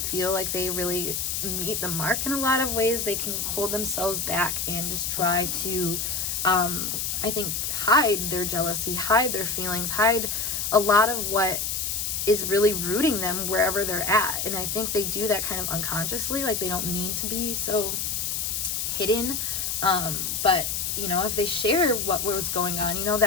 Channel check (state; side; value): noise; left; hiss, 1 dB below the sound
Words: feel like they really meet the mark in a lot of ways. They can hold themselves back and just try to I think hide their jealousy, hide their feelings, hide a lot of what is really rooting them wherever they're at. And I think they do that kind of unconsciously, like they don't mean to be so hidden, but you know, if they share what was going on, you know,